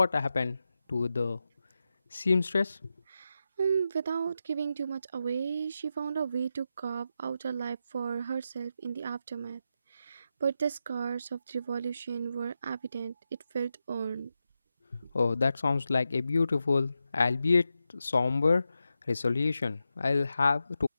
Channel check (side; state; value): both; inverted; correlation -0.89